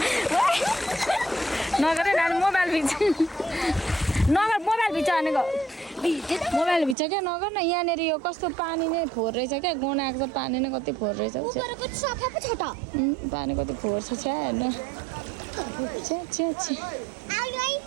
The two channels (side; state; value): left; drops out; at 7.0 s